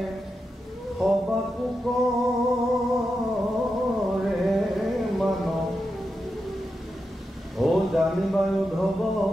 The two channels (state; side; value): normal; both; correlation 0.88